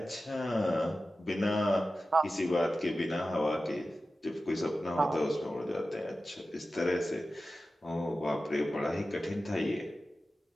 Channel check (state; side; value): normal; both; correlation 0.94